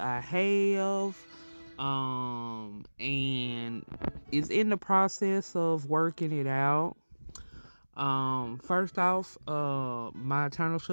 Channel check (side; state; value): both; inverted; correlation -1.00